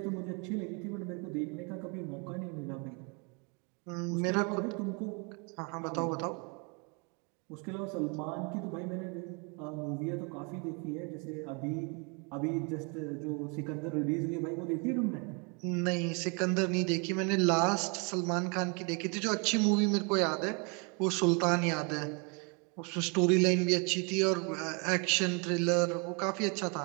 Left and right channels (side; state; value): left; quieter; 33.6 dB